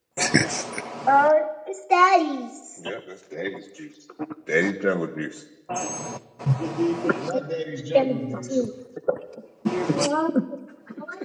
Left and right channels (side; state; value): both; identical; correlation 1.00